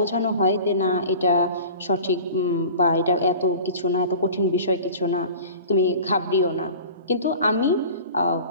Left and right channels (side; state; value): both; inverted; correlation -0.39